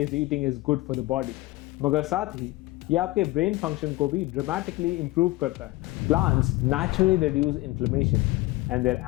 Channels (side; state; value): right; quieter; 19.7 dB